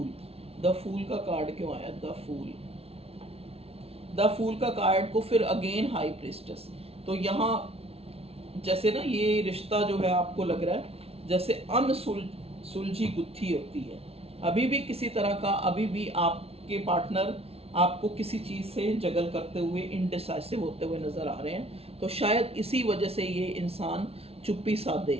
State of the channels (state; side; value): late; left; 0.29 ms